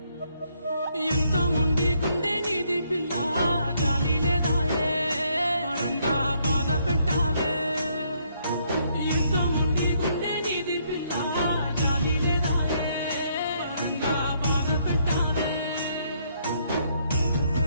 ఎంత ముండి గుండె నీది పిల్ల జాలి లేదాయే వరంగా బాధ పెట్టావే ఎంత ముండి గుండె నీది పిల్ల జాలి లేదాయే వరంగా బాధ పెట్టావే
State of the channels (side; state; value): both; inverted; correlation -0.71